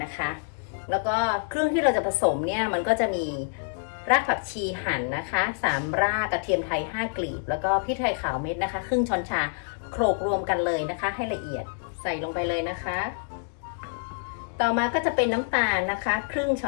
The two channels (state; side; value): silent; right; digital silence